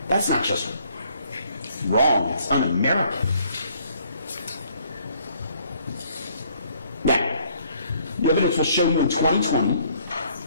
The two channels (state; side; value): inverted; both; correlation -0.63